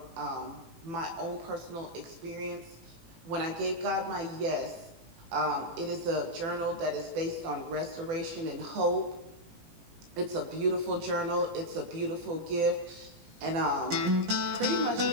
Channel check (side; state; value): left; late; 18 ms